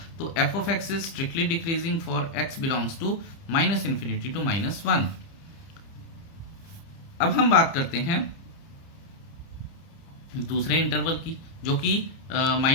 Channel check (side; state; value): right; late; 30 ms